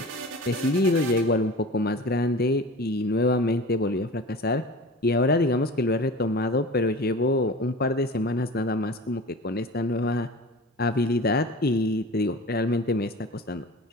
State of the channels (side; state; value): both; normal; correlation 0.36